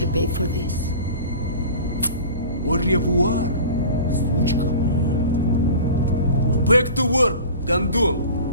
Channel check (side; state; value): both; inverted; correlation -0.38